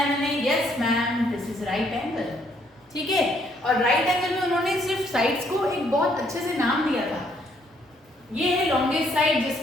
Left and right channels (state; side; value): normal; both; correlation 0.69